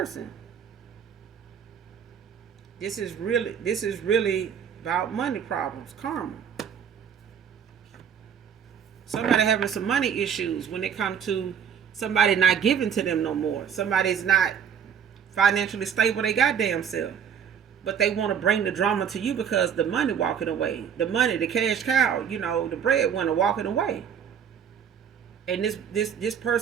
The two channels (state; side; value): quieter; left; 7.9 dB